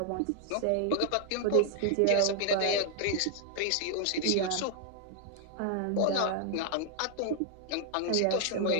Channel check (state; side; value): different; both; correlation 0.00